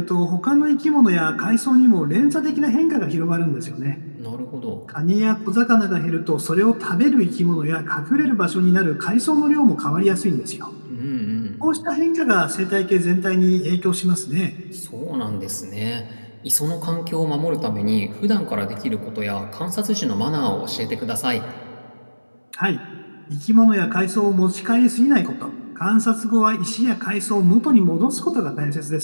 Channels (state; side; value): inverted; both; correlation -1.00